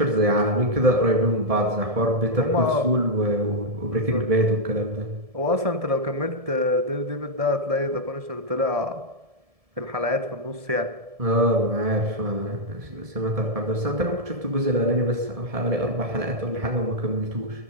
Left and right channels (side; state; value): left; late; 1.7 ms